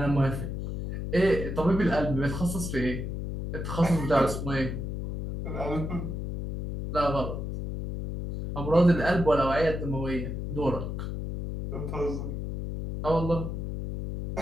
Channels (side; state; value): left; noise; hum, 4 dB below the sound